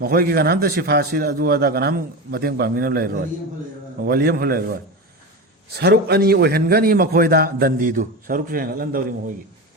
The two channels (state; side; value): normal; both; correlation 0.23